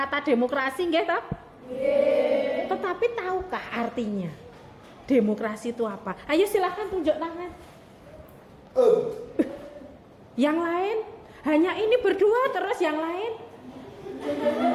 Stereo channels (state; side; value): identical; both; correlation 1.00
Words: demokrasi nggih toh? Tetapi tahukah artinya? Demokrasi itu apa? Ayo silahkan tunjuk tangan. Yang lain? Hanya ini berdua terus yang lain?